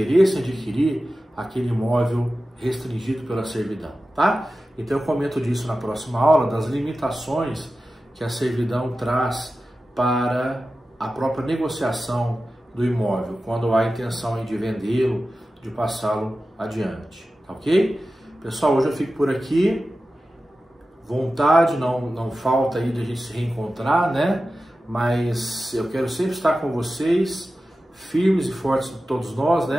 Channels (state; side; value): normal; both; correlation 0.94